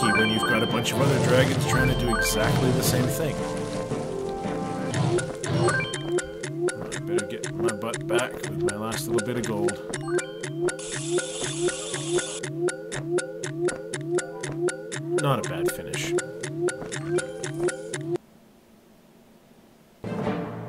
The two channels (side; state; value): both; identical; correlation 1.00